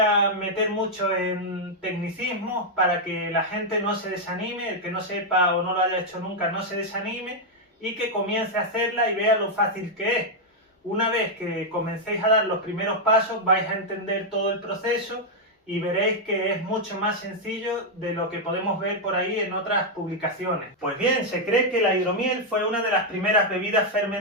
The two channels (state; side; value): normal; both; correlation -0.02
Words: meter mucho en tecnicismos para que la gente no se desanime, el que no sepa o no lo haya hecho nunca no se desanime y que comience a hacerla y vea lo fácil que es. Una vez que comencéis a dar los primeros pasos vais a entender todo el proceso y veréis que es mucho más sencillo de lo que podemos ver por ahí en otras publicaciones. Pues bien, se cree que la hidromiel fue una de las primeras bebidas